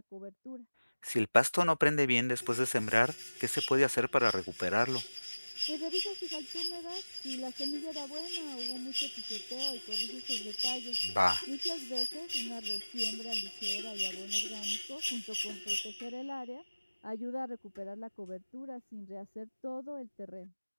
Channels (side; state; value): both; inverted; correlation -1.00